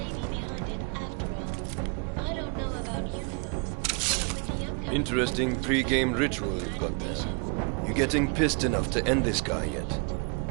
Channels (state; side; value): quieter; left; 35.2 dB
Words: be behind it after all. I don't know about you folks, but with the upcoming... Interesting pre-game ritual you've got there. You getting pissed enough to end this guy yet?